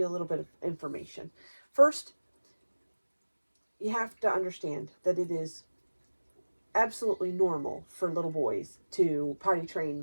a little bit of information. First, you have to understand that it is absolutely normal for little boys to potty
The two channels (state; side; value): inverted; both; correlation -1.00